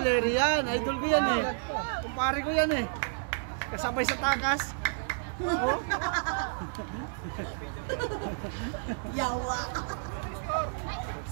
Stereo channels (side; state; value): left; silent; digital silence